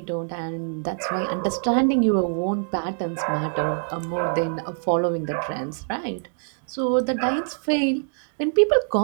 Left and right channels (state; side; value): silent; left; digital silence